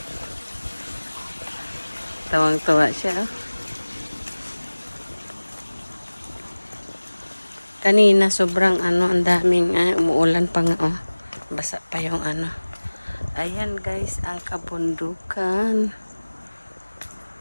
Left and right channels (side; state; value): both; inverted; correlation -1.00